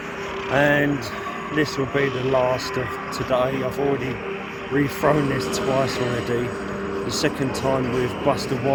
And this will be the last of today. I've already rethrown this twice already. The second time with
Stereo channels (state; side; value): identical; both; correlation 1.00